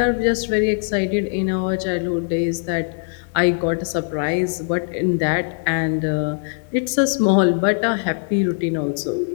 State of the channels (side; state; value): right; silent; 63 dB below the other